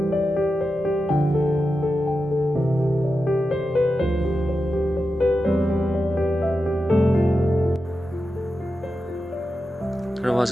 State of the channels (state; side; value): normal; both; correlation 0.90